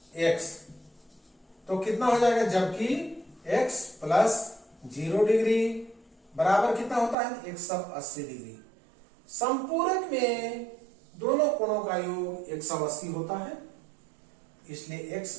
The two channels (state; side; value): drops out; left; at 7.2 s